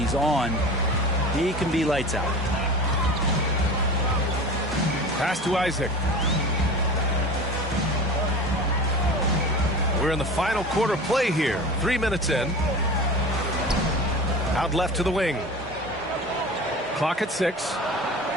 on, he can be lights out. Pass to Isaac. We're in the final quarter play here. 3 minutes in. Out left to the wing. Clock at 6.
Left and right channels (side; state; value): both; normal; correlation 0.34